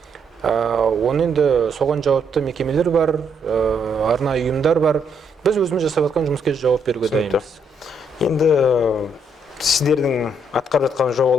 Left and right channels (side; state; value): both; normal; correlation 0.73